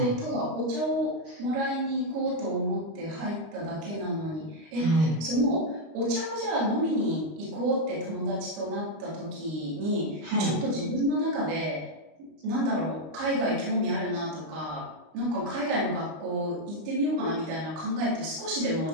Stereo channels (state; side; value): late; left; 25 ms